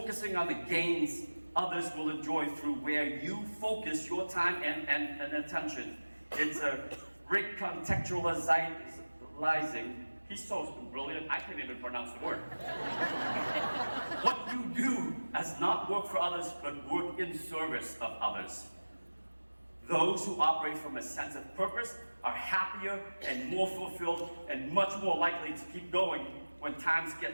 on the gains others will enjoy through where you focus your time and attention. It's a Rick contextualizing. He's so brilliant, I can't even pronounce the word. What you do as not work for others, but work in service of others. Those who operate from a sense of purpose are happier and more fulfilled and much more likely to keep going when times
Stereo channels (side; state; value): both; inverted; correlation -1.00